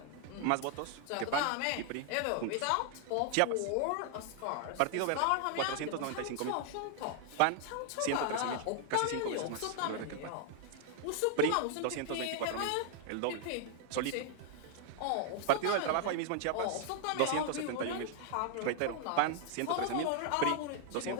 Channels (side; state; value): both; different; correlation 0.00